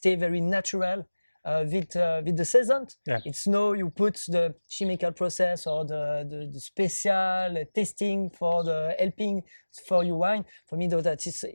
very natural. With the season, it's no you put the chemical process or the special tasting for the helping for your wine. For me, though, that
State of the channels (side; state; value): both; inverted; correlation -1.00